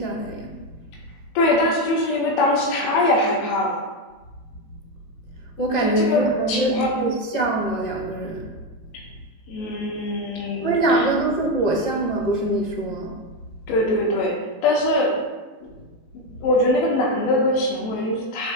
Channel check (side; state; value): right; late; 19 ms